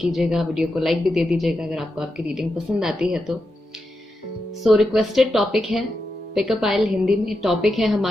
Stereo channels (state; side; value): normal; both; correlation 0.87